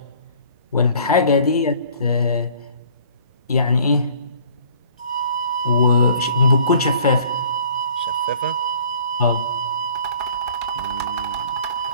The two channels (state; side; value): inverted; both; correlation -0.53